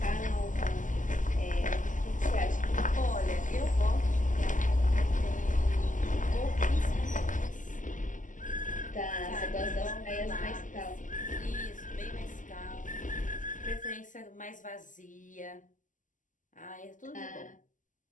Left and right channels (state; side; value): late; right; 0.37 ms